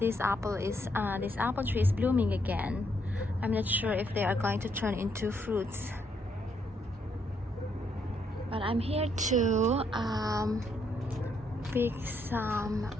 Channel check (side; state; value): both; normal; correlation 0.74